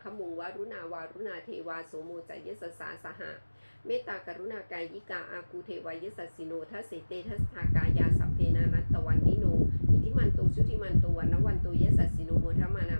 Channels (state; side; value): inverted; both; correlation -1.00